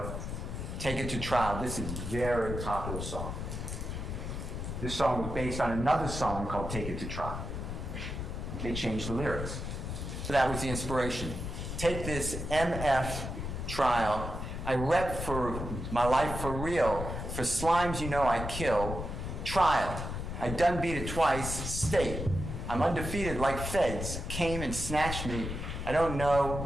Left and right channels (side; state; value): left; noise; rumble, 5 dB below the sound